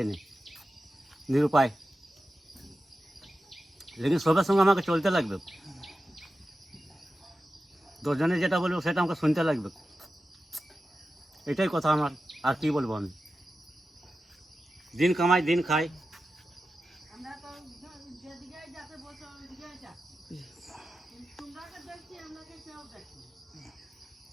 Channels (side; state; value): both; normal; correlation 0.92